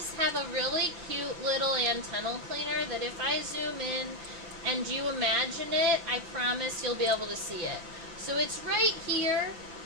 have a really cute little antennal cleaner that if I zoom in and you imagine it, I promise you'll be able to see it. So it's right here.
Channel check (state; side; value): late; left; 6.0 ms